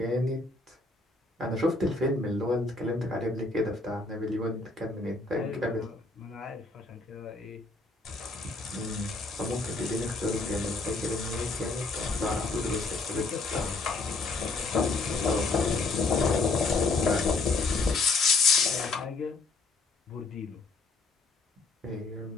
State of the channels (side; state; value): right; quieter; 3.6 dB